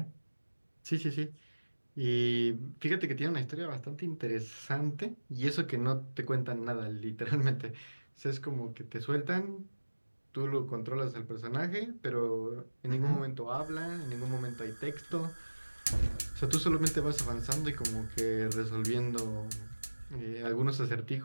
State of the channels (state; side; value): inverted; both; correlation -1.00